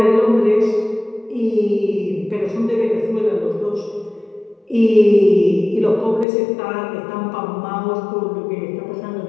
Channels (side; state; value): right; drops out; at 6.2 s